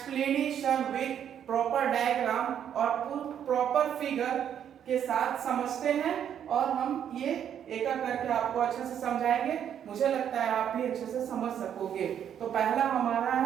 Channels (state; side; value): quieter; left; 9.2 dB